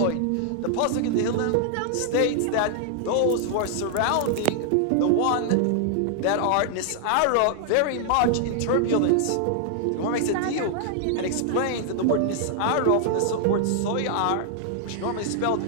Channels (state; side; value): different; both; correlation 0.00